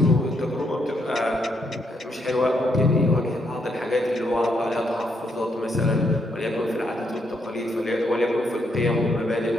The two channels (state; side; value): normal; both; correlation 0.76